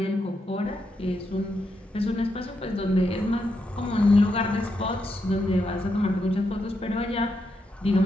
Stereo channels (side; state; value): both; normal; correlation 0.82